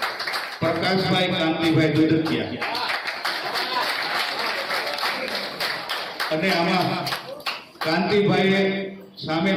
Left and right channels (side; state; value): both; identical; correlation 1.00